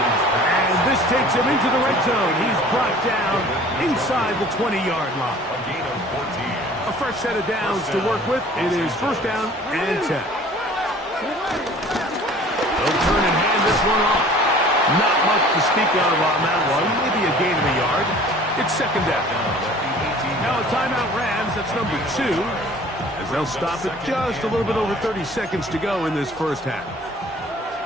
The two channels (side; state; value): both; normal; correlation 0.49